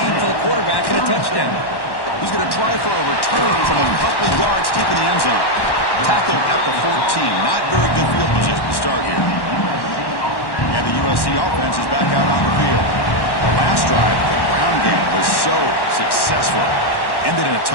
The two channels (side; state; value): right; late; 1.1 ms